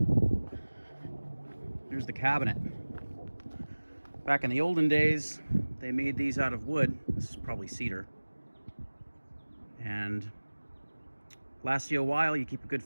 Here's the cabinet. Back in the olden days, they made these out of wood. This is probably cedar. And lasts you a while. You keep a good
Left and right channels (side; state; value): both; inverted; correlation -1.00